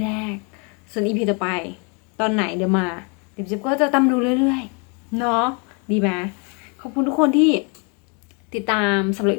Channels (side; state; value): right; quieter; 34.6 dB